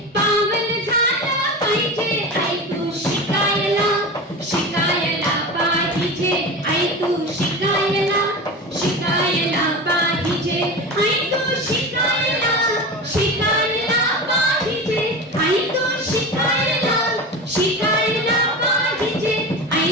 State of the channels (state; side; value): normal; both; correlation 0.28